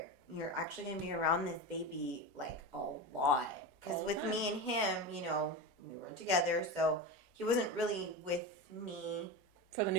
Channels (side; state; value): both; normal; correlation 0.22